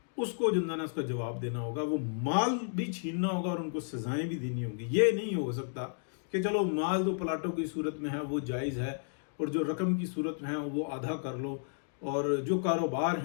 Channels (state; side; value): silent; right; digital silence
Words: اس کو جنزانہ اس کا جواب دینا ہوگا، وہ مال بھی چھیننا ہوگا اور ان کو سزائیں بھی دینی ہوں گی۔ یہ نہیں ہو سکتا کہ چلو مال تو پلاٹوں کی صورت میں ہے وہ جائز ہے، اور جو رقم کی صورت میں ہے وہ آدھا کر لو، اور جو کاروبار